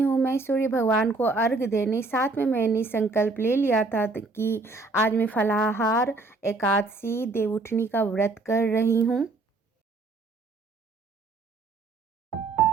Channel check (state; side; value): quieter; left; 3.5 dB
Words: हूँ मैं सूर्य भगवान को अर्घ देने। साथ में मैंने संकल्प ले लिया था कि आज मैं फलाहार एकादशी देवउठनी का व्रत कर रही हूँ।